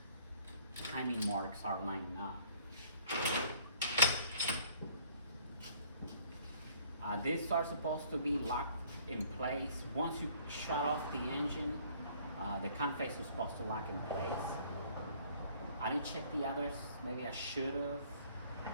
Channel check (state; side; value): inverted; both; correlation -0.57